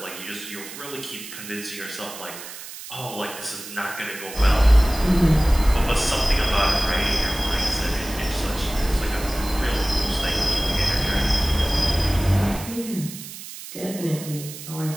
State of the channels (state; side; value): noise; right; hiss, 12 dB below the sound